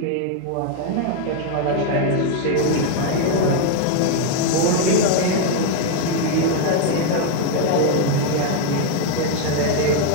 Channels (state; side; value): different; both; correlation 0.01